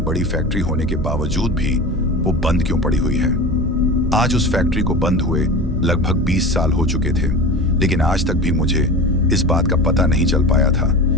फैक्ट्री होने के बावजूद भी वो बंद क्यों पड़ी हुई है। आज उस फैक्ट्री को बंद हुए लगभग 20 साल हो चुके थे, लेकिन आज तक भी मुझे इस बात का पता नहीं चल पाया था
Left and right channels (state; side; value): normal; both; correlation 0.31